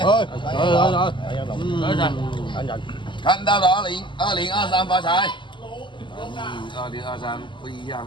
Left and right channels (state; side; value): late; right; 0.24 ms